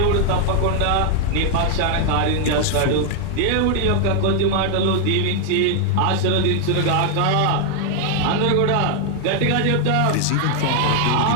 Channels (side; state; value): both; different; correlation 0.00